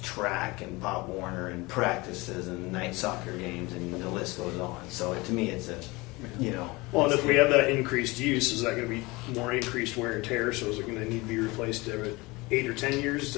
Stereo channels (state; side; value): quieter; right; 23.3 dB